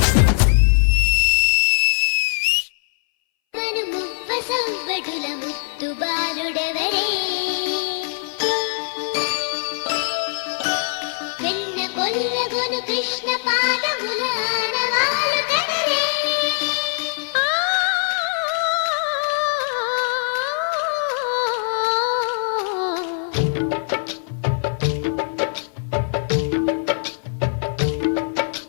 సవ్వడుల ముత్తు బాలుడెవరే వెన్న కొల్లగొను కృష్ణ పాద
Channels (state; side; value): silent; right; 62 dB below the other